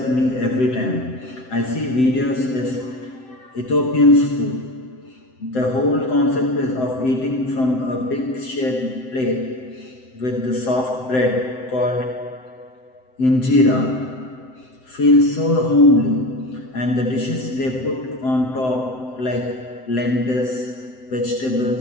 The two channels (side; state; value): right; late; 7.8 ms